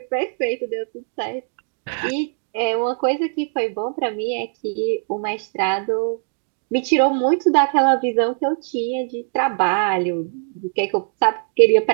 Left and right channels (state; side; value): silent; left; digital silence